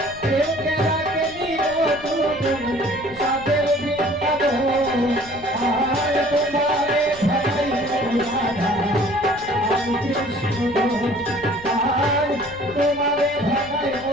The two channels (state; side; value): noise; left; rumble, 19 dB below the sound